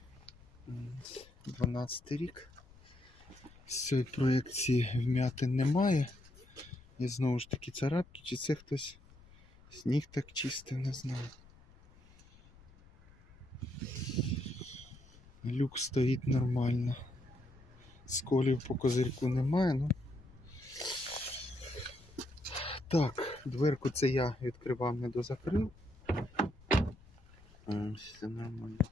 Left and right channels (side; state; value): left; noise; rumble, 24 dB below the sound